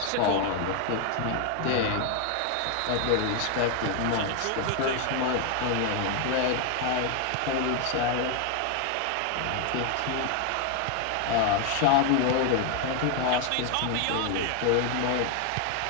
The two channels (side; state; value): both; different; correlation 0.00